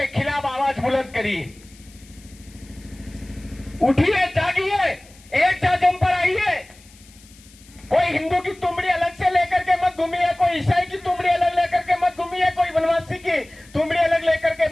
खिलाफ आवाज बुलंद करिए, उठिए, जागिए, एक जम पर आइए। कोई हिंदू की तुमड़ी अलग से लेकर के मत घूमिए, कोई ईसाई की तुमड़ी अलग लेकर के मत घूमिए, कोई वनवासी की तुमड़ी अलग लेकर के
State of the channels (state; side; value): noise; left; hiss, 25 dB below the sound